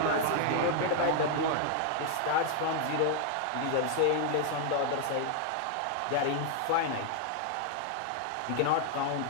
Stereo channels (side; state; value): both; different; correlation 0.00